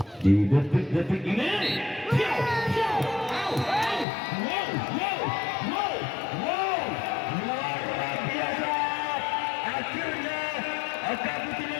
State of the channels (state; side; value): drops out; right; at 4.0 s